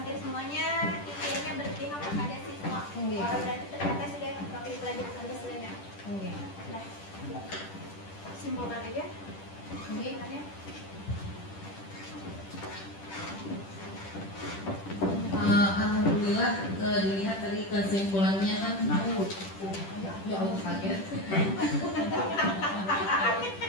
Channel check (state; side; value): late; right; 10 ms